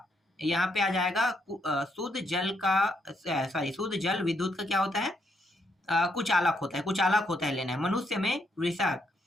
यहाँ पे आ जाएगा शुद्ध जल विद्युत का क्या होता है, कुचालक होता है लेना है। मनुष्य में वृषक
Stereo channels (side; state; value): both; normal; correlation 0.76